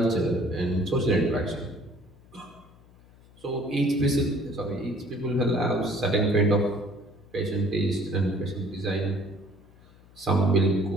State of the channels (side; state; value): left; noise; hum, 26 dB below the sound